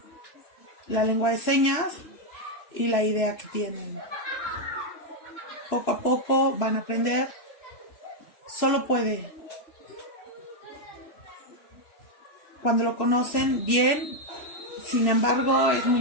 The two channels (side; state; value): right; late; 3.0 ms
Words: la lengua de señas y la idea que tienen. Poco a poco van a aprender. Solo puede. Cuando lo conocen bien, sin embargo, es muy